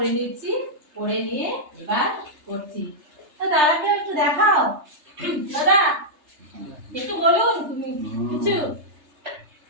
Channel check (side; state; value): left; late; 3.3 ms